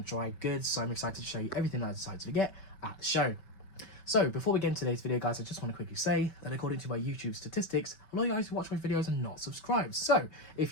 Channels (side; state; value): right; late; 5.2 ms